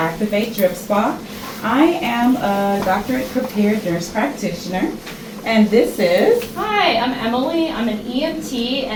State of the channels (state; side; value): identical; both; correlation 1.00